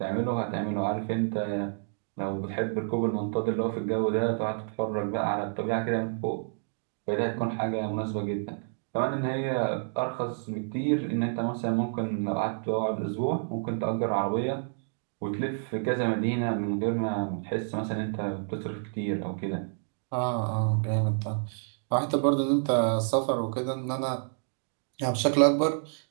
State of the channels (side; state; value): left; silent; digital silence